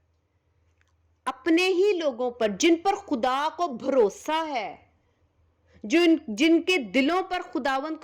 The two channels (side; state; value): both; identical; correlation 1.00